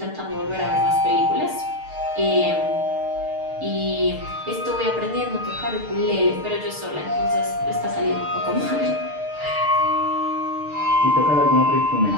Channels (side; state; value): left; late; 6.6 ms